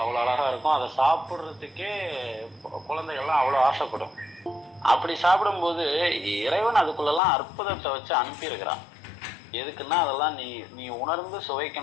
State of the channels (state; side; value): drops out; right; at 7.2 s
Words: அழகா இருக்கும். அதை சாப்பிடுறதுக்கே குழந்தைகள்லாம் அவ்வளவு ஆசைப்படும். அப்படி சாப்பிடும்போது இறைவன் அதுக்குள்ளெல்லாம் அற்புதத்தை வச்சு அனுப்பியிருக்கிறான். எதுக்குன்னா அதெல்லாம் நீ உணர்ந்து